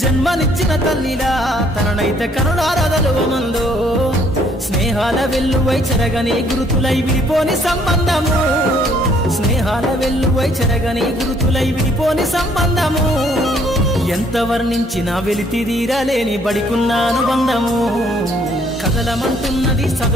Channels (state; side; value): normal; both; correlation 0.64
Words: జన్మనిచ్చిన తల్లిలా తననైతే కరుణారదలువమందో స్నేహాల వెల్లువై చెరగని గురుతులై విడిపోని సంబంధము స్నేహాల వెల్లువై చెరగని గురుతులై విడిపోని సంబంధము ఎంత వర్ణించినా వెలితిరీరలేని బడికున్న అనుబంధము కదలమంటున్నది